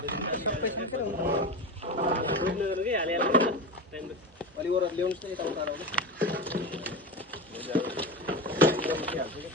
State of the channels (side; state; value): both; normal; correlation 0.23